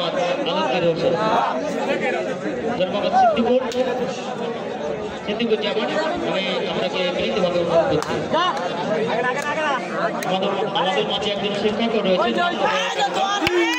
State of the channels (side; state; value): both; identical; correlation 1.00